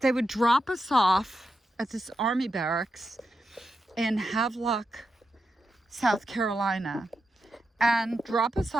would drop us off at this army barracks in Havelock, South Carolina, and drop us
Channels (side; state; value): both; normal; correlation 0.87